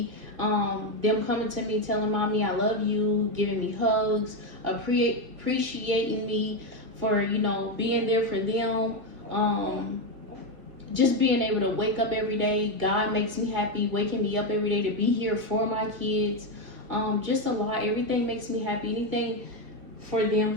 Them coming to me telling mommy I love you, giving me hugs, appreciating me for, you know, being there for them. Just being able to wake up every day. God makes me happy, waking me up every day to be here for my kids. Just a lot. Everything makes me happy. Anything for them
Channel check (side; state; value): left; late; 2.0 ms